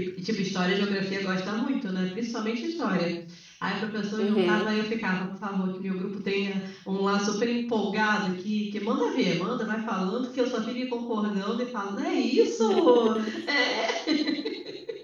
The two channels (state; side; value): identical; both; correlation 1.00